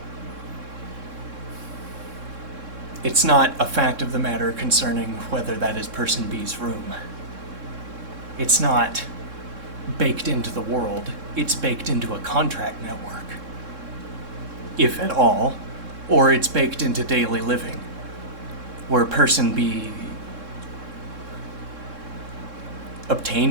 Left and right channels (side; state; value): left; late; 3.7 ms